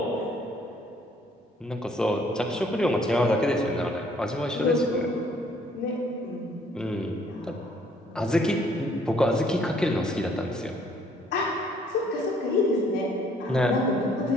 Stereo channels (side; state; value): both; normal; correlation 0.62